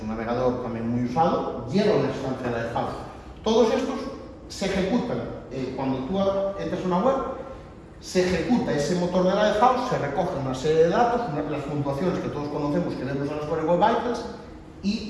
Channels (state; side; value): identical; both; correlation 1.00